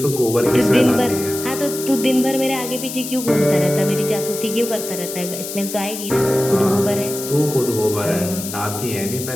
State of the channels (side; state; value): left; noise; hiss, 8 dB below the sound